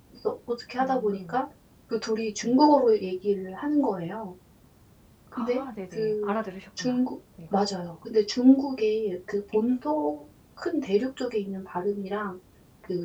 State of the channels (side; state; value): both; identical; correlation 1.00